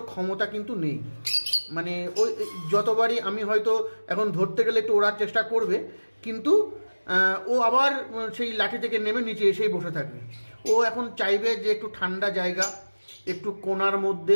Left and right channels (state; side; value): inverted; both; correlation -1.00